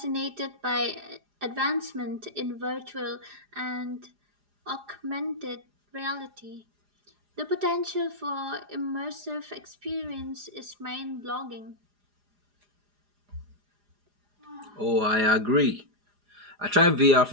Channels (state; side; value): late; left; 4.9 ms